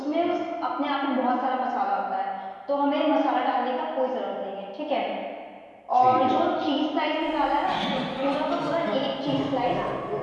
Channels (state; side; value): identical; both; correlation 1.00